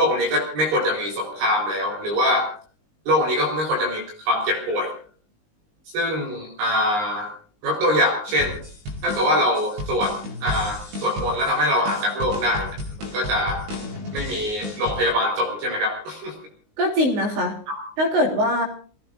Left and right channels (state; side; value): late; left; 19 ms